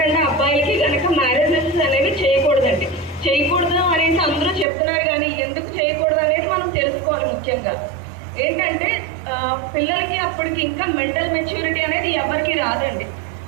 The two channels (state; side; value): drops out; left; at 4.7 s